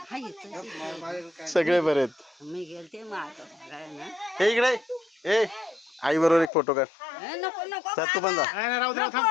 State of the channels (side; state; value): right; drops out; at 6.5 s